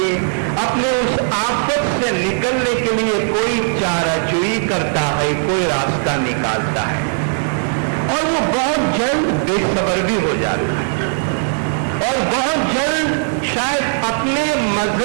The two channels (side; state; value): left; silent; digital silence